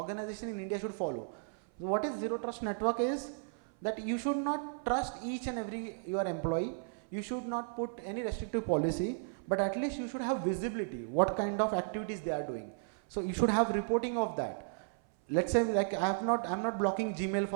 in India should follow. What is zero trust network is that you should not trust each and every your employee. You should not put any restrictive policy, but at least you should have visibility, what kind of activities they are doing. So you should have reporting of that. Let's say like I'm not blocking Gmail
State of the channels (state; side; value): silent; left; 55 dB below the other